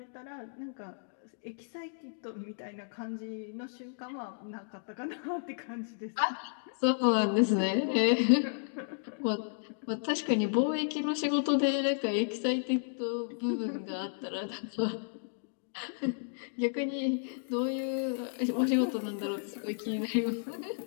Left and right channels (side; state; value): right; silent; digital silence